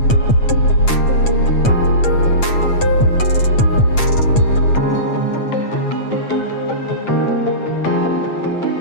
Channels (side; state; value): right; late; 8.5 ms